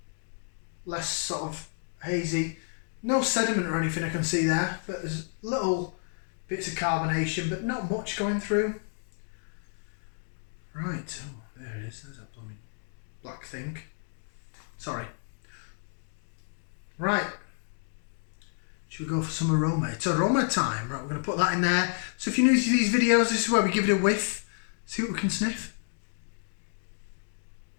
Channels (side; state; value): right; silent; digital silence